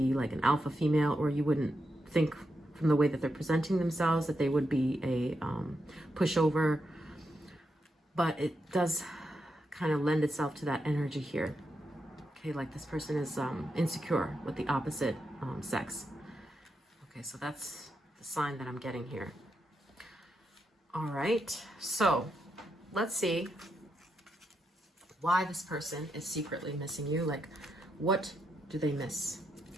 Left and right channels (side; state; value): both; normal; correlation 0.84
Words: like an alpha female, or you wouldn't think from the way that they're presenting themselves that they would be a pushover. But it does kind of lend itself to that energy here. Okay, like this person is insecure with the opposite sex. Okay, so that's the sign that I'm getting here. All right, so let's see why this person is secretly missing you. Like, what do they miss?